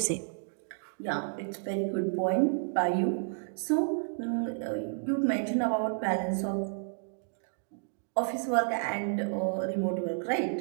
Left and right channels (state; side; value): silent; left; digital silence